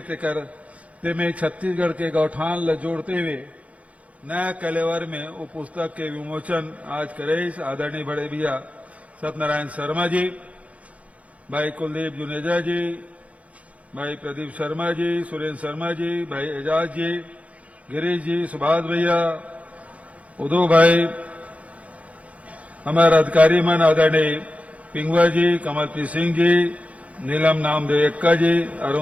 तेकर तेमें छत्तीसगढ़ के गौठान ल जोड़ते हुए नया कलेवर में वो पुस्तक के विमोचन आज करे आदरणीय बड़े भैया सत्यनारायण शर्मा जी, भाई कुलदीप जुनेजा जी, भाई प्रदीप शर्मा जी, सुरेंद्र शर्मा जी, भाई एजाज जी, गिरीश जी, सुभाष भैया, उदो भाई, हमारे अधिकारी मन आदरणीय पिंगवा जी, कमलप्रीत सिंह जी, नीलम नामदेव एक्का जी,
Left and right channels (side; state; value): left; late; 0.066 ms